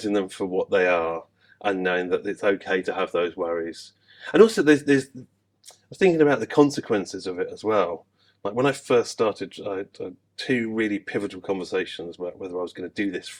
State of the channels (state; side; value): identical; both; correlation 1.00